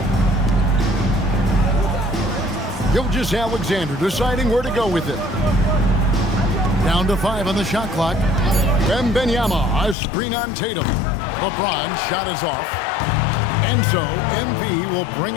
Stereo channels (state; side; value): drops out; right; at 10.0 s